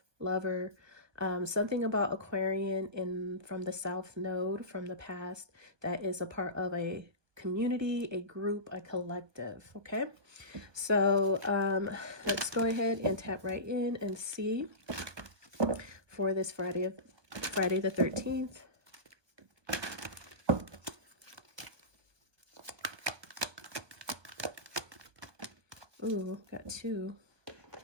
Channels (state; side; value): late; left; 1.2 ms